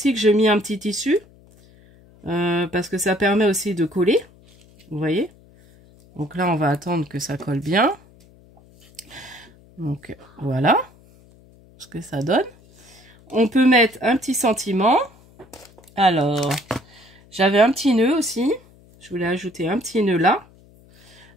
que j'ai mis un petit tissu. Parce que ça permet aussi de coller. Vous voyez? Donc là, on va attendre que ça colle bien. Donc voilà ce que ça donne. On peut mettre un petit sentiment. Alors, j'avais un petit nœud aussi. Je voulais ajouter un petit nœud là.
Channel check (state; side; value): noise; left; hum, 27 dB below the sound